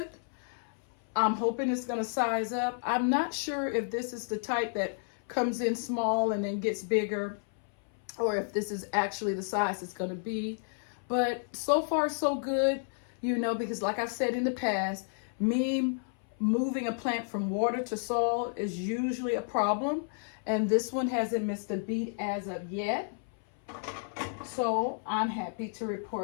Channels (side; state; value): right; silent; 57 dB below the other